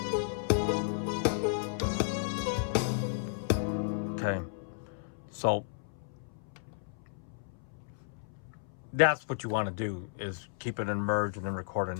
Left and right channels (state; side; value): silent; right; 55 dB below the other